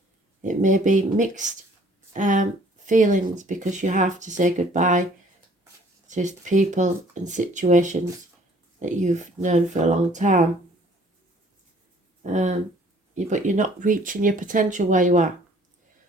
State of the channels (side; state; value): both; normal; correlation 0.56